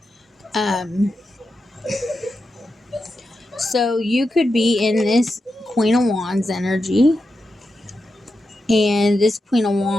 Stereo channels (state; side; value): normal; both; correlation 0.88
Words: So you could be in this Queen of Wands energy, and this Queen of